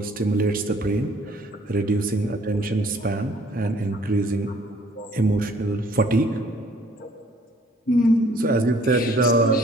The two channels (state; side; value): normal; both; correlation 0.58